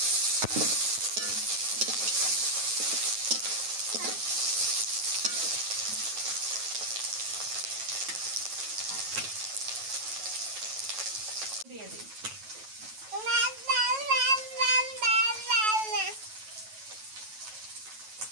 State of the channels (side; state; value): left; late; 9.2 ms